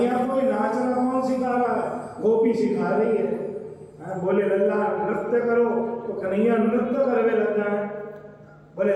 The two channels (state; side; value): identical; both; correlation 1.00